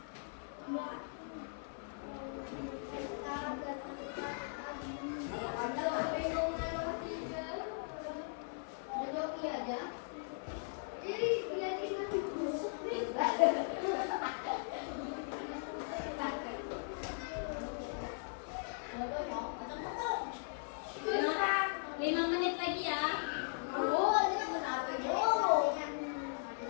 Lima menit lagi ya. Budaya.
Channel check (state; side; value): silent; right; 52 dB below the other